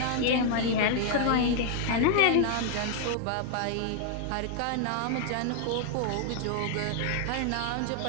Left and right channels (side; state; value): both; different; correlation 0.00